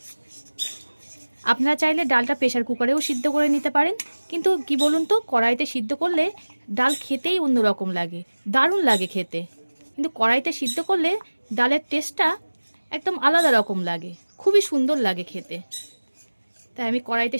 আপনারা চাইলে ডালটা প্রেসার কুকারেও সিদ্ধ করে নিতে পারেন, কিন্তু কি বলুন তো, কড়াইতে সিদ্ধ করলে ডাল খেতেই অন্যরকম লাগে, দারুণ লাগে খেতে। কিন্তু কড়াইতে সিদ্ধ করলে ডালের টেস্টটা একদম আলাদা রকম লাগে, খুবই সুন্দর লাগে খেতে। তাই আমি কড়াইতে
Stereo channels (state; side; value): inverted; both; correlation -1.00